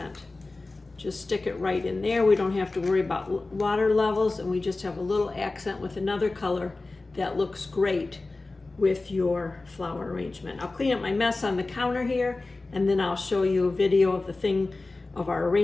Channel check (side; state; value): right; quieter; 3.3 dB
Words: Just stick it right in there. We don't have to worry about water levels, and we just have a little accent with another color that looks great with your flower arrangement. I'll clean up my mess on the counter here, and then I'll show you a video of our